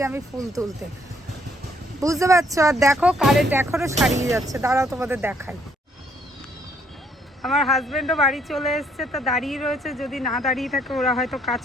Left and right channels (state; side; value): normal; both; correlation 0.68